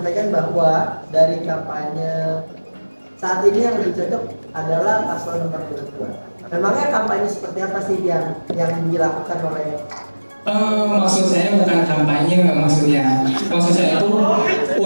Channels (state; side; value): inverted; both; correlation -1.00